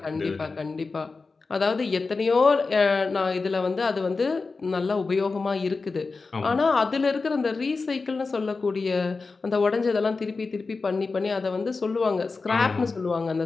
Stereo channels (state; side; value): quieter; right; 4.1 dB